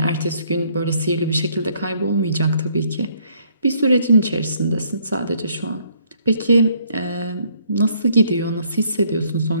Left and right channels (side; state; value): both; inverted; correlation -0.67